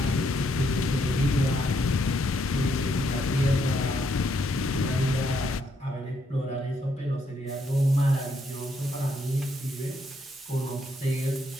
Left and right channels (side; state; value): both; normal; correlation 0.74